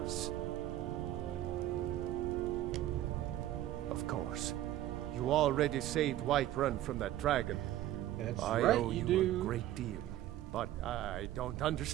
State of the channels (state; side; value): quieter; left; 13.6 dB